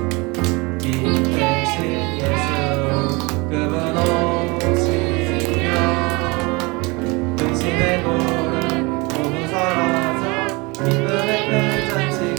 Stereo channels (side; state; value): left; quieter; 26.2 dB